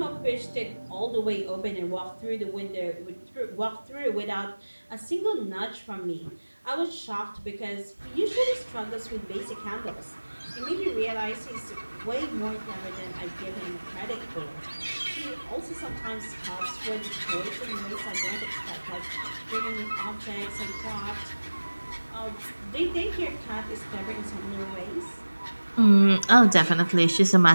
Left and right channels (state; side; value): inverted; both; correlation -1.00